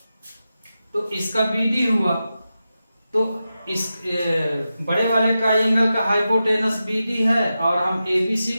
तो इसका BD हुआ। तो इस बड़े वाले ट्राइंगल का हाइपोटेनस BD है और हम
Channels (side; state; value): both; inverted; correlation -0.91